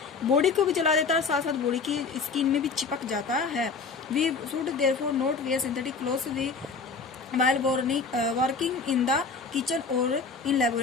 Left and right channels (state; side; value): quieter; right; 4.7 dB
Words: बॉडी को भी जला देता है, साथ साथ बॉडी की स्किन में भी चिपक जाता है। We should therefore not wear synthetic clothes we while working in the kitchen और इन